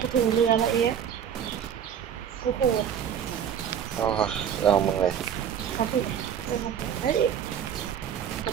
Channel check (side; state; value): left; quieter; 8.7 dB